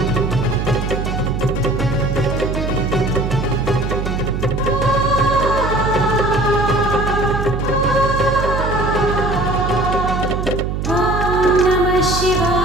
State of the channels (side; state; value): right; noise; hum, 2 dB below the sound